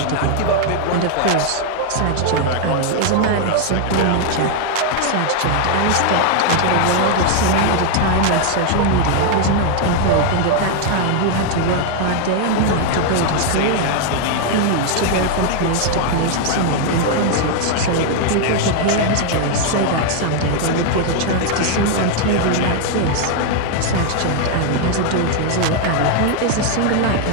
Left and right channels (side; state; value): both; different; correlation 0.00